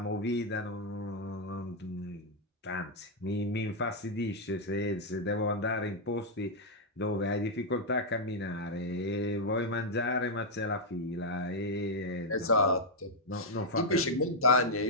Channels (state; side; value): normal; both; correlation -0.03